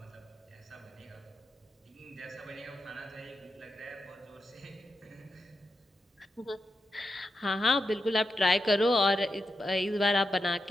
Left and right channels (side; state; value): both; normal; correlation 0.87